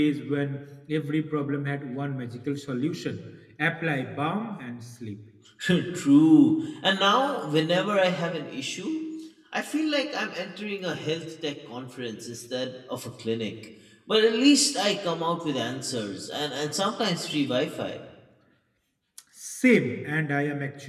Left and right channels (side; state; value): both; identical; correlation 1.00